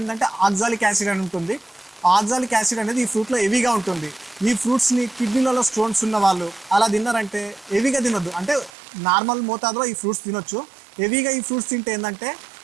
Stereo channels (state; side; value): drops out; left; at 8.7 s